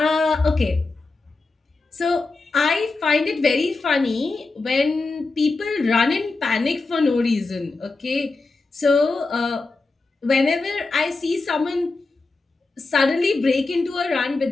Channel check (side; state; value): right; quieter; 3.6 dB